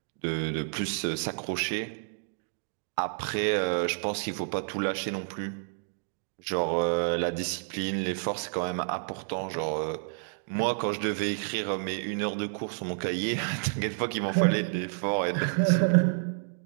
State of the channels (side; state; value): left; silent; digital silence